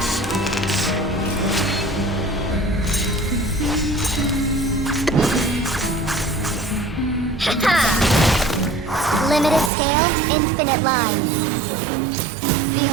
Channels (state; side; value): drops out; left; at 9.7 s